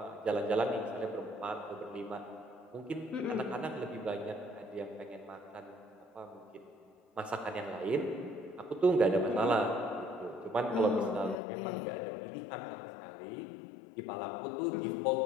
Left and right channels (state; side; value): drops out; right; at 11.4 s